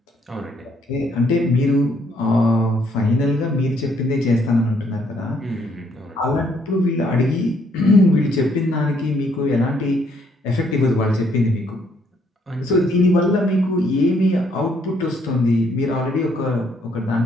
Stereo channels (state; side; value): normal; both; correlation 0.68